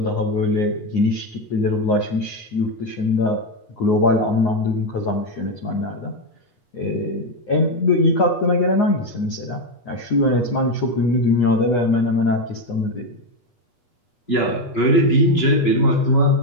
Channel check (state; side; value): late; right; 8.3 ms